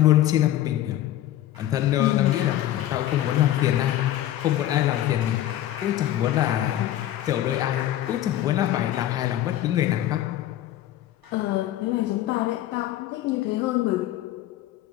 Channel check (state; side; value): quieter; right; 13.2 dB